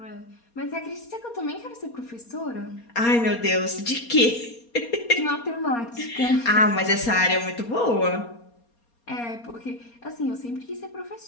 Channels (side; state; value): right; late; 4.3 ms